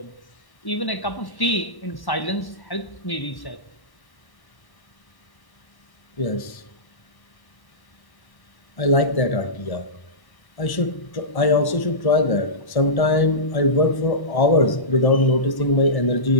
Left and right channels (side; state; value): right; late; 1.1 ms